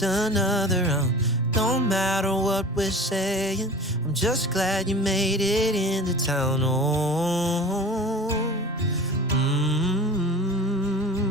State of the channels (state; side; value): normal; both; correlation 0.38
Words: another round. Don't matter what we're saying, I'm just glad you made it into town. Oh,